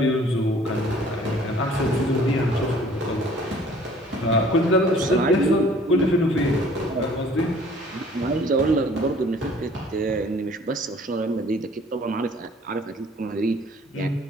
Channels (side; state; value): both; normal; correlation 0.54